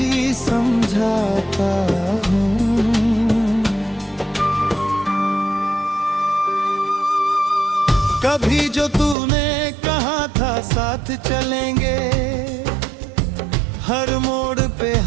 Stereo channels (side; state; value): left; drops out; at 9.2 s